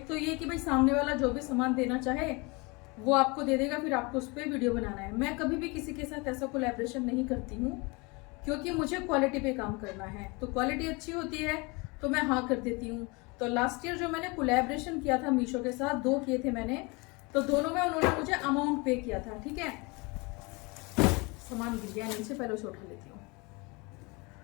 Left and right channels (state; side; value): quieter; right; 27.5 dB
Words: तो ये कि भाई सामने वाला जो भी सामान देना चाहे वो आपको दे देगा, फिर आपको उस पर वीडियो बनाना है। मैं कभी भी किसी के साथ ऐसा कोलैबोरेशन नहीं करती हूँ क्योंकि मुझे क्वालिटी पे काम करना है। तो क्वालिटी अच्छी होती है तो मैं हाँ कर देती हूँ। तो लास्ट ईयर जो मैंने कोलैबोरेशन किया था मीशो के साथ, 2 किए थे मैंने, तो दोनों में उन्होंने मुझे अमाउंट पे किया था। ठीक है, सामान गिर गया नीचे, पहले उसे उठा लेती हूँ।